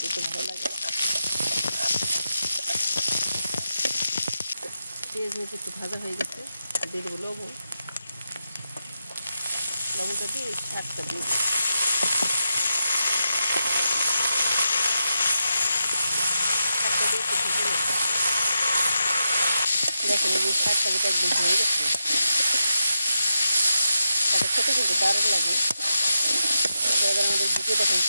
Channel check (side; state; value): both; inverted; correlation -0.86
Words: একটু ভালো লাগে। পেঁয়াজ মরিচ একটু ভাজা হয়ে গেছে, দিয়ে দেবো লবণ। লবণটা দিয়ে শাকটা দিয়ে দেবো। শাকটা দিয়ে একটু ভেজে নেব। দেখেন এই শাকটা যেটা একদম হয়ে গেছে, তাতে খেতে কিন্তু দারুণ লাগে। এবার আমাদের দিকে দেখেন